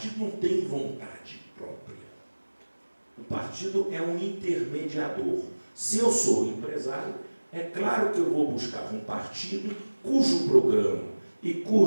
não tem vontade própria. O partido é um intermediador. Se eu sou empresário, é claro que eu vou buscar um partido cujo programa e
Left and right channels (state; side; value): inverted; both; correlation -1.00